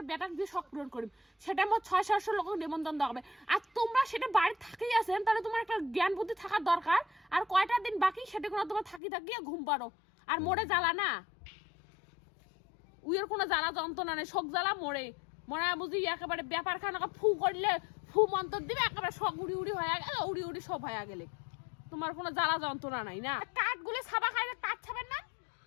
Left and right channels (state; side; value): drops out; right; at 9.0 s